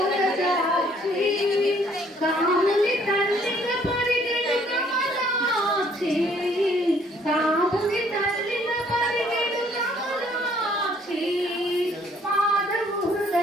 కాముని తల్లిగా పరిగెడు కమలాక్షి కాముని తల్లిగా పరిగెడు కమలాక్షి మాధవు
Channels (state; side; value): normal; both; correlation 0.62